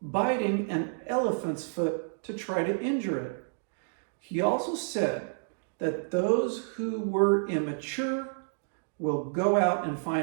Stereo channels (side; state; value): left; silent; digital silence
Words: an elephant's foot to try to injure it. He also said that those who were immature will go out and